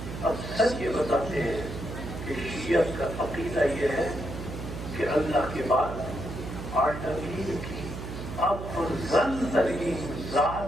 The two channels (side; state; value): right; noise; hum, 8 dB below the sound